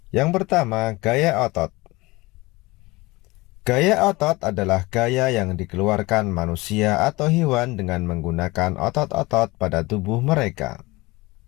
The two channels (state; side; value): quieter; right; 22.2 dB